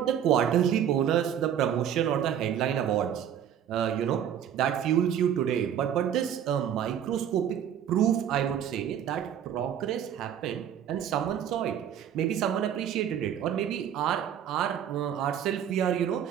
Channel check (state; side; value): quieter; left; 9.4 dB